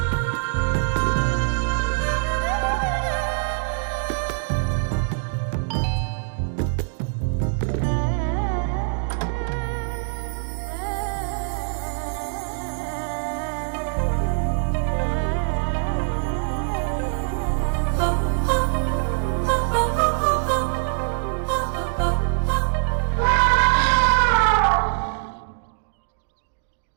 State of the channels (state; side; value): silent; left; digital silence